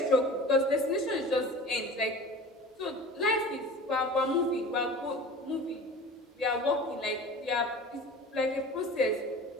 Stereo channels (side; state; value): both; normal; correlation 0.39